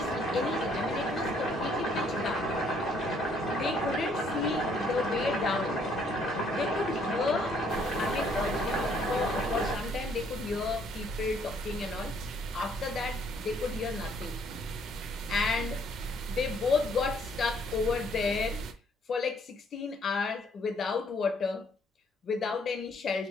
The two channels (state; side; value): normal; both; correlation 0.65